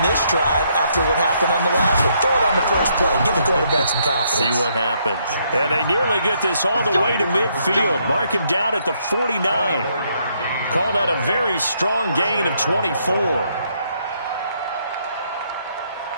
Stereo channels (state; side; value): inverted; both; correlation -0.72